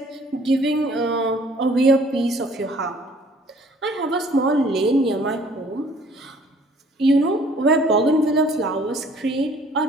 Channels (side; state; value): both; normal; correlation 0.56